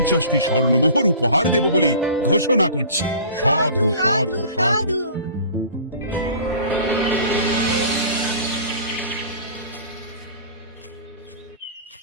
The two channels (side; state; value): both; inverted; correlation -0.43